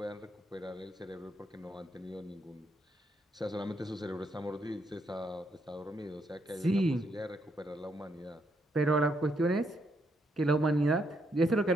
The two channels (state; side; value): normal; both; correlation 0.76